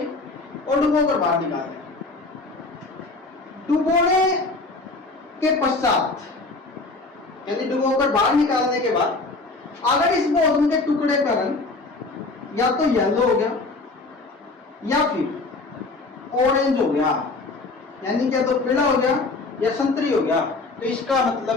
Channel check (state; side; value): quieter; right; 3.4 dB